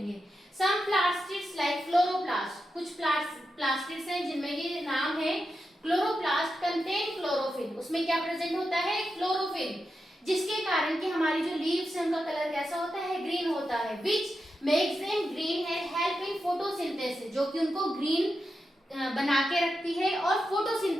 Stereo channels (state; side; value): normal; both; correlation 0.88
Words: सम प्लास्टिड्स लाइक क्लोरोप्लास्ट, कुछ प्लास्टिड्स हैं जिनमें ये नाम है क्लोरोप्लास्ट कंटेन क्लोरोफिल, उसमें क्या प्रेजेंट होता है, क्लोरोफिल, जिसके कारण कि हमारी जो लीव्स है उनका कलर कैसा होता है, ग्रीन होता है। Which makes them green and help in photosynthesis, जो कि उनको ग्रीन बना के रखती है और